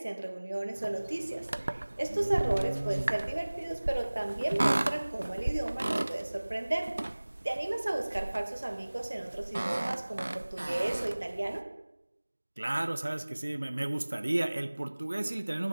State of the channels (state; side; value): inverted; both; correlation -1.00